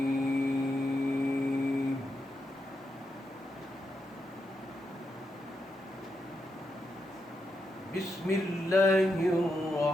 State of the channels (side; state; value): both; normal; correlation 0.84